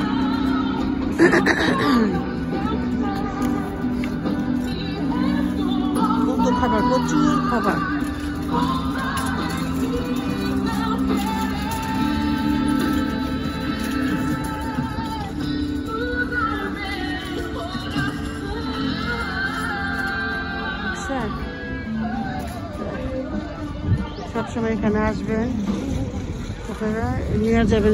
কত খাবার, প্রচুর খাবার। সবসময় এখানে আসবেন, আপনারা নিয়ে যাবেন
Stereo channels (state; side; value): identical; both; correlation 1.00